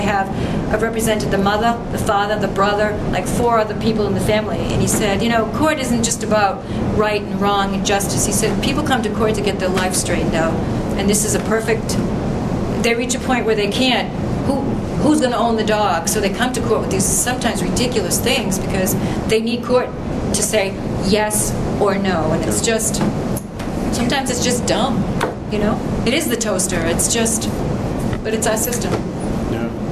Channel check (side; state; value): both; identical; correlation 1.00